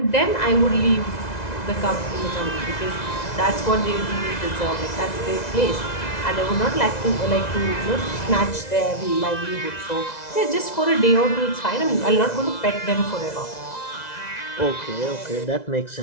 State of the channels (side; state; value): right; late; 2.0 ms